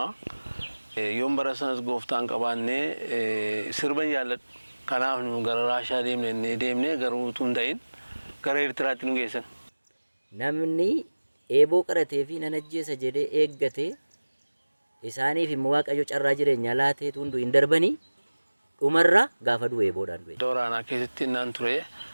Yoon bara sanas gooftaan qabaannee sirban jaalladhu. Kanaaf nu gara Raashaa deemnee garuu utuu hin ta'in gara Eertiraatti nu geessan. Namni eeboo qaratee fi nan ajjeesa jedhee eeggate isaaniif immoo Waaqayyo carraa jireenyaa laatee tundu hin darbanii dhumarraa gaafa du'e eeboodhaan du'e. Dooraanaa keessatti naan ture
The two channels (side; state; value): both; inverted; correlation -1.00